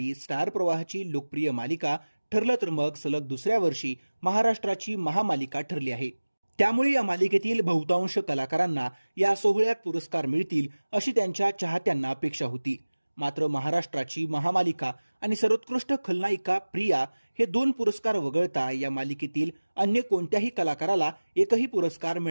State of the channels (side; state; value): both; inverted; correlation -1.00